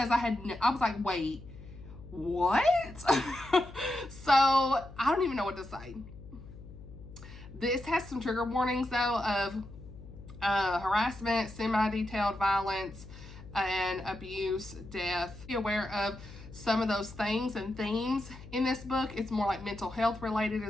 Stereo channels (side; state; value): left; noise; hum, 16 dB below the sound